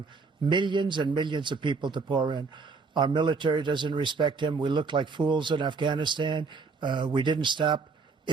millions and millions of people to pour in. Our military doesn't respect him. We look like fools in Afghanistan. We didn't stop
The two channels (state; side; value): quieter; left; 4.6 dB